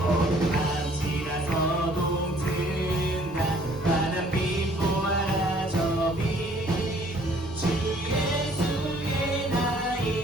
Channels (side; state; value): both; normal; correlation 0.59